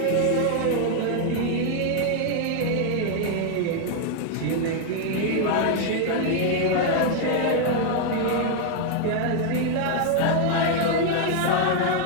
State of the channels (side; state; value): both; different; correlation 0.00